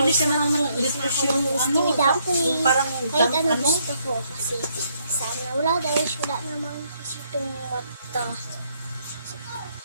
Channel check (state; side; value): inverted; both; correlation -0.72